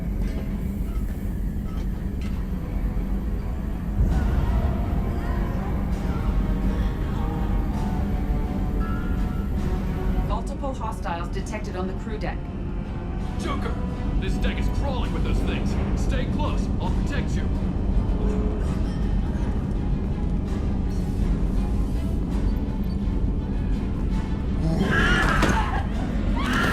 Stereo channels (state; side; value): identical; both; correlation 1.00